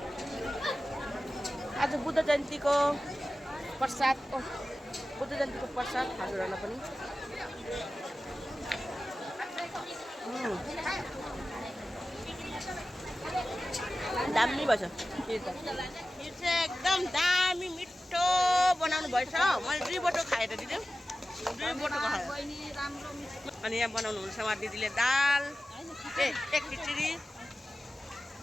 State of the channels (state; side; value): normal; both; correlation 0.95